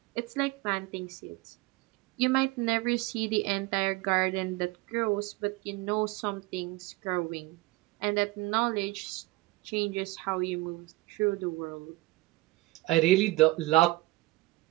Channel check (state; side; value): quieter; left; 20.3 dB